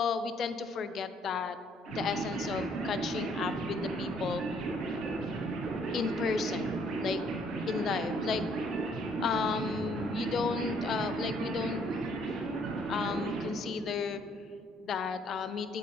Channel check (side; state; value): both; normal; correlation 0.65